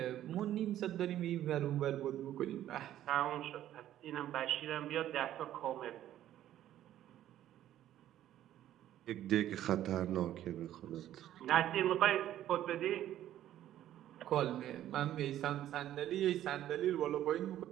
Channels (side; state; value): left; quieter; 12.3 dB